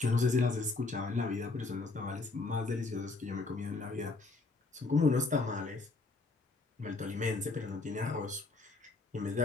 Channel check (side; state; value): right; quieter; 3.6 dB